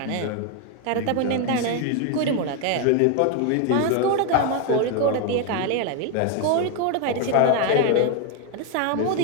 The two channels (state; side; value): different; both; correlation 0.01